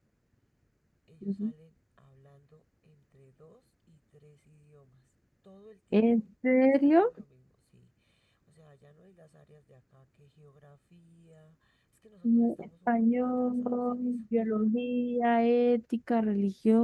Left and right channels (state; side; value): identical; both; correlation 1.00